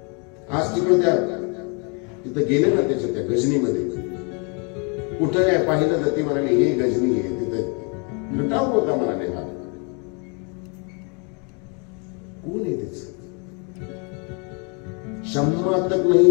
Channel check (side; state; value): right; quieter; 35.2 dB